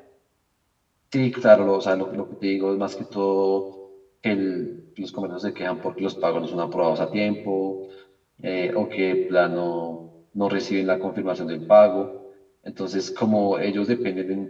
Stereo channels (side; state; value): both; identical; correlation 1.00